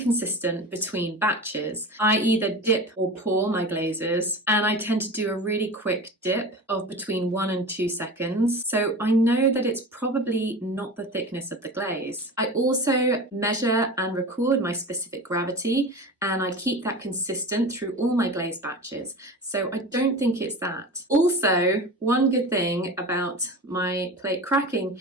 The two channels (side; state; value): both; normal; correlation 0.32